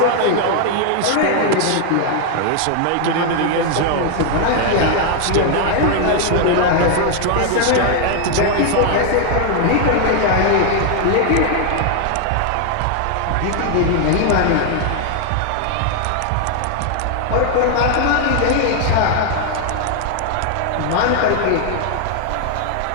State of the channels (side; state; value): both; different; correlation 0.00